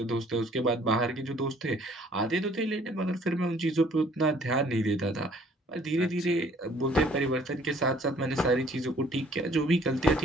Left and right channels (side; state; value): both; normal; correlation 0.58